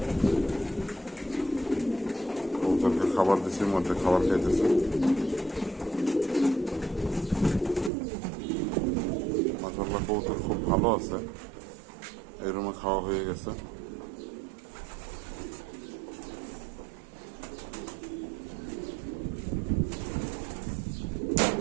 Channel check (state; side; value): drops out; left; at 7.9 s